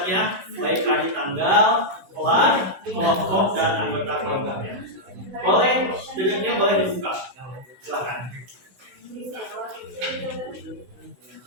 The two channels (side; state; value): left; late; 16 ms